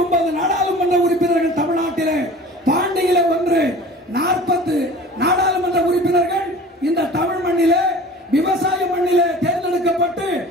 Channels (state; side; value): normal; both; correlation 0.42